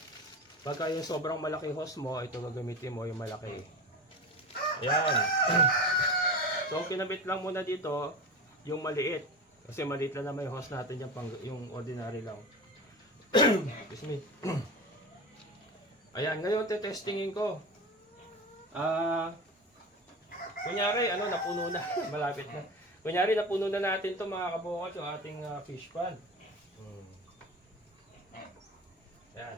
Pagka yung sobrang malaki hose mo, ito gagamitin mo yung malaki. Ayan. So, kinabit lang muna dito yung maliit. Kasi maliit lang naman yung hose natin yung, yung ordinary lang. Excuse me. Ayan, ngayon testingin ko. Kunyari, napuno na. Malapit na. Kunyari, napuno na natin to mga kabukas yung ating fish pan. Ayan.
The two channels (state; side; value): normal; both; correlation 0.29